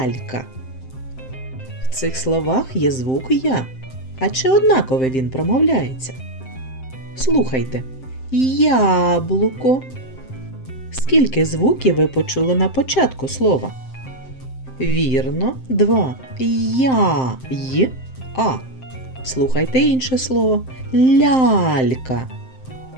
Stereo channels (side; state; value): right; late; 7.7 ms